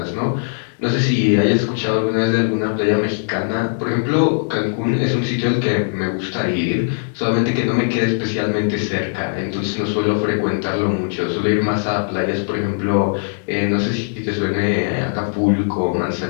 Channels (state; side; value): silent; right; 66 dB below the other